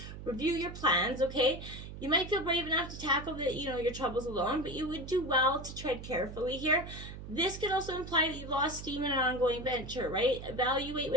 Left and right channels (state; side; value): noise; right; hum, 11 dB below the sound